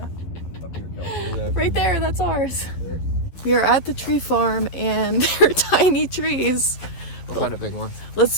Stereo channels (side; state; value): right; late; 11 ms